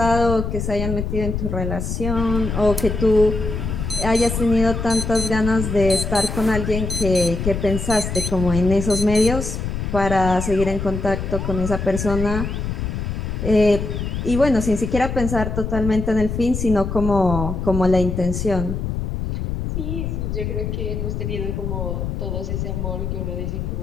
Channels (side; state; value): left; noise; rumble, 3 dB below the sound